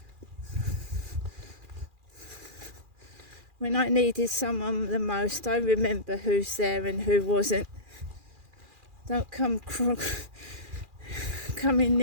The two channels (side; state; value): left; late; 2.4 ms